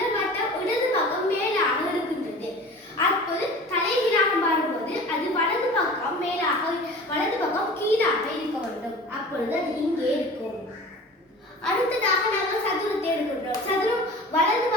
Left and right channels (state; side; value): normal; both; correlation 0.40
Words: வட்டம் இடது பக்கம் மேலாக இருக்கின்றது. அப்போது தலைகீழாக மாறும்போது அது வலது பக்கம் மேலாக வலது பக்கம் கீழாக இருக்க வேண்டும். அப்பொழுது அது இங்கே இருக்கும். அடுத்ததாக நாங்கள் சதுரத்தை எடுக்கின்றோம். சதுரம் வலது